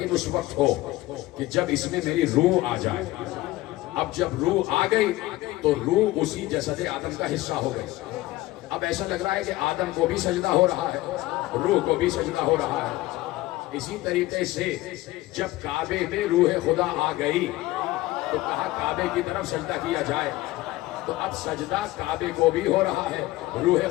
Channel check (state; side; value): quieter; right; 17.8 dB